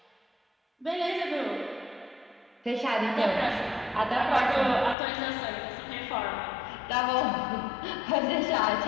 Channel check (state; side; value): drops out; right; at 5.0 s